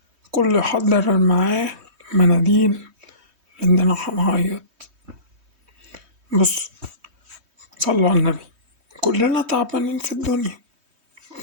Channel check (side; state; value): left; late; 3.2 ms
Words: كله يحضر معاه مناديل لأننا هنعيط. بص، صلوا على النبي، كلنا تعبانين في الدنيا،